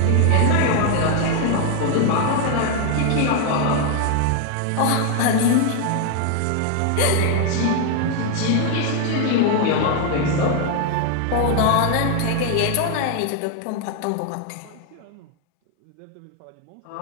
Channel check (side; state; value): both; different; correlation 0.01